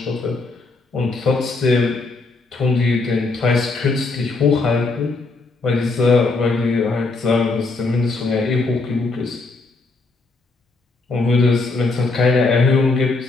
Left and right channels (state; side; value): quieter; right; 3.6 dB